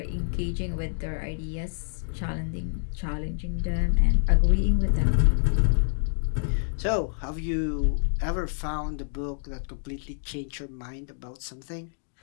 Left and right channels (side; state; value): right; silent; digital silence